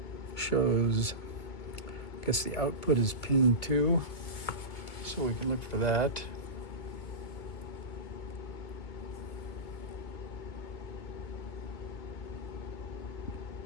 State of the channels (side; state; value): right; late; 2.2 ms